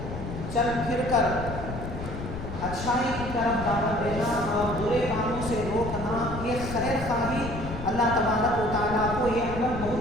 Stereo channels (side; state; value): left; noise; rumble, 7 dB below the sound